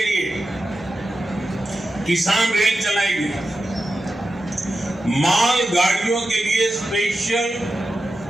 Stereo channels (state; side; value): normal; both; correlation 0.91